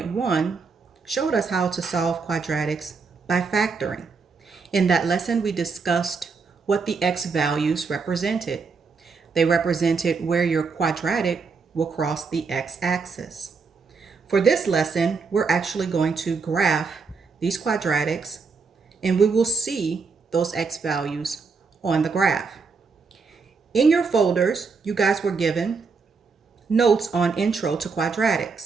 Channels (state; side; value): quieter; left; 4.9 dB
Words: showed us how to solve quadratics by factoring. In that lesson, we discussed what the x values represented. They represented where your quadratic will cross the x-axis. For this lesson, we're actually going to graph these quadratics, and we will see those x values on the graph. In your folders, you guys were given notes on Intro to